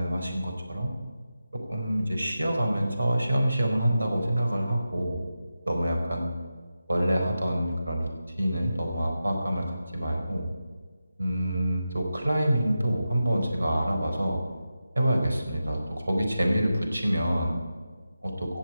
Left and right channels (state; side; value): inverted; both; correlation -0.91